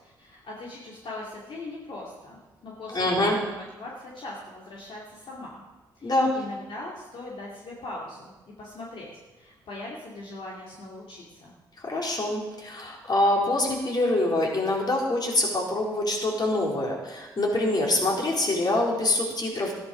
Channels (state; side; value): normal; both; correlation 0.58